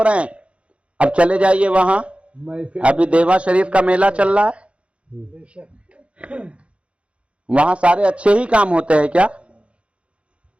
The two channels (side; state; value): left; late; 0.061 ms